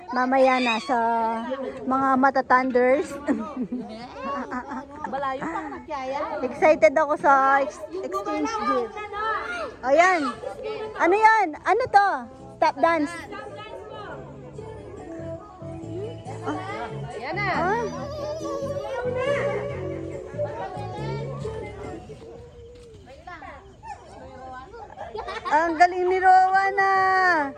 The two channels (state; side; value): identical; both; correlation 1.00